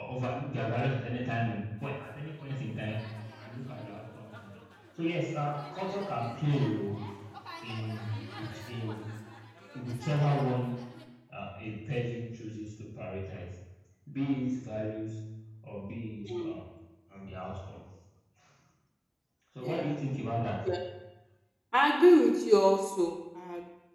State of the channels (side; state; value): both; identical; correlation 1.00